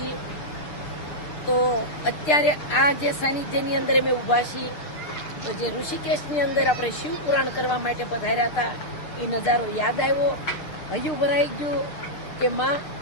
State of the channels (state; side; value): late; right; 6.9 ms